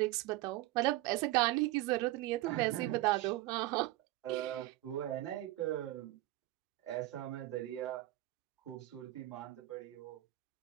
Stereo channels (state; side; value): quieter; left; 17.3 dB